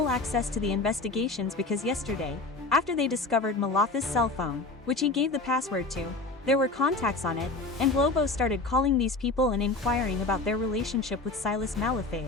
access to the investigations because yesterday, after they discovered Malafa's cell phone, which he gave the password to, there were contacts on it, and Globo started calling these people and inquiring about their relationship with Silas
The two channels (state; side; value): quieter; right; 3.4 dB